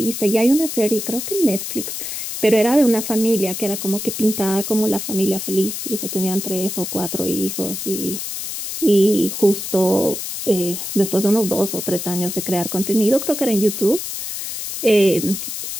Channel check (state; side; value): noise; left; hiss, 6 dB below the sound